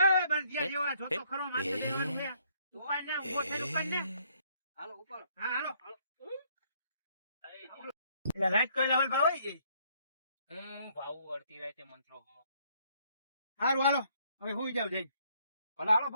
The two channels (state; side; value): inverted; both; correlation -0.67